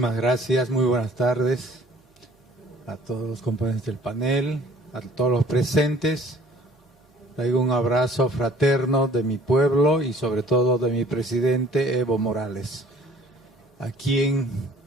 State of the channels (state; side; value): normal; both; correlation 0.52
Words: gracias, muy buenas tardes a todos los componentes del panel, a todos los presentes. Traigo un abrazo fraterno de mi pueblo y sobre todo de mi presidente Evo Morales, a quien